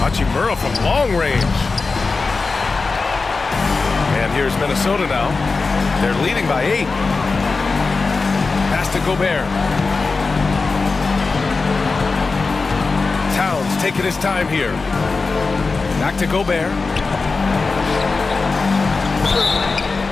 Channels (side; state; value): right; quieter; 4.1 dB